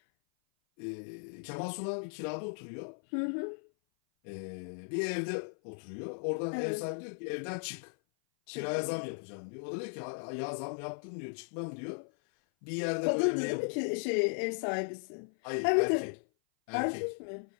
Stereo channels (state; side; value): silent; right; 54 dB below the other